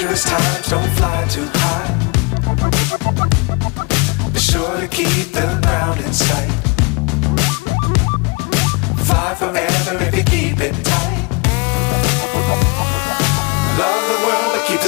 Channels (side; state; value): right; quieter; 29.4 dB